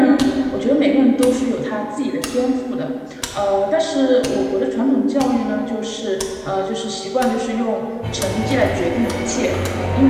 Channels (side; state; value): both; identical; correlation 1.00